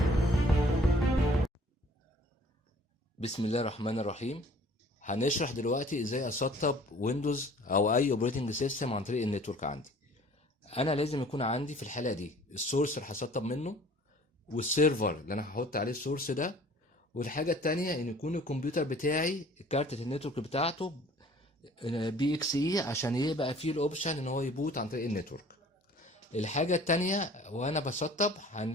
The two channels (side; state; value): both; normal; correlation 0.52